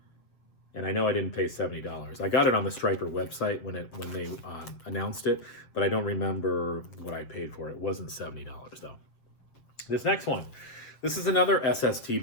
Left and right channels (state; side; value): late; right; 7.6 ms